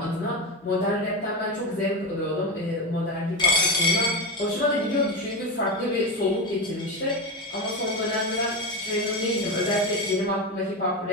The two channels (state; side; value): normal; both; correlation 0.16